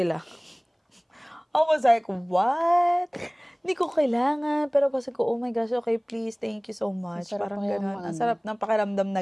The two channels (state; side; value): identical; both; correlation 1.00